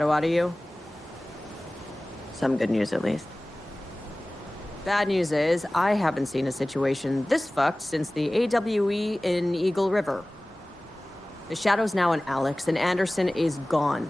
out of you? Some good news, at least. Bad news is, I haven't seen a situation this fucked since the AWE in Eagle River. The shadow's now in Alex, and Anderson is gone.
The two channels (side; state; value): both; normal; correlation 0.98